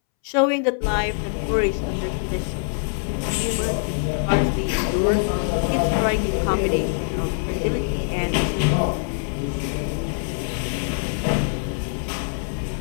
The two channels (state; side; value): silent; right; 63 dB below the other